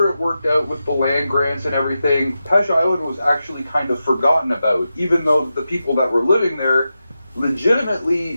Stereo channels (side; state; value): both; inverted; correlation -0.90